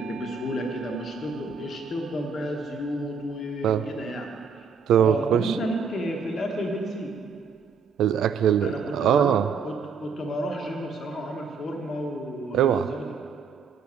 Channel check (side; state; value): left; quieter; 5.5 dB